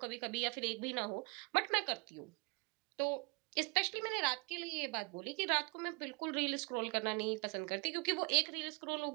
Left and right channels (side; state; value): left; quieter; 31.2 dB